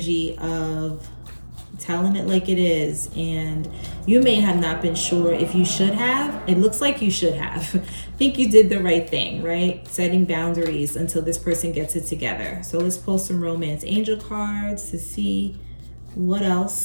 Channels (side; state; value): both; inverted; correlation -1.00